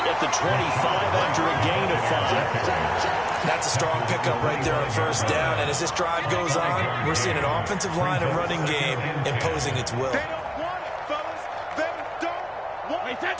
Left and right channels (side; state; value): both; identical; correlation 1.00